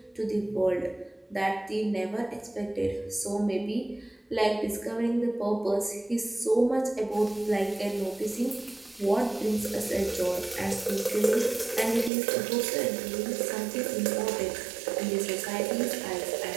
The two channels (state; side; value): drops out; left; at 12.1 s